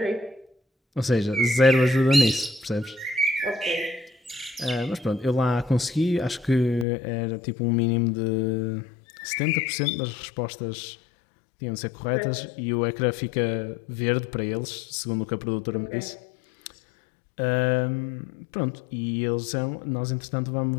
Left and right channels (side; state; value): right; drops out; at 6.9 s